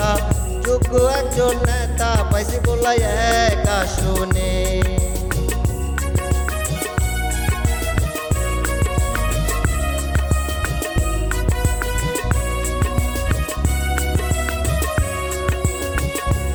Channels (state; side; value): identical; both; correlation 1.00